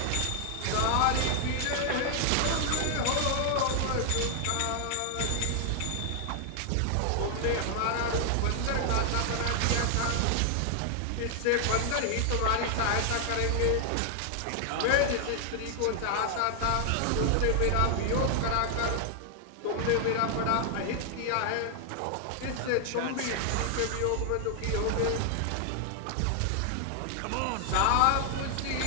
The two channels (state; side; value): different; both; correlation 0.00